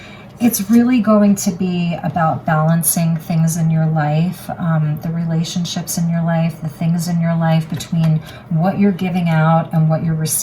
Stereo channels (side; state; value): both; identical; correlation 1.00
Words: It's really going to be about balancing things in your life, the relationships in your life, the things in your life between what you're giving out and what you're